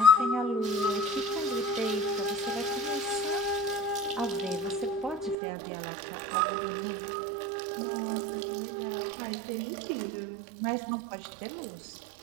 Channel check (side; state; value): left; drops out; at 5.4 s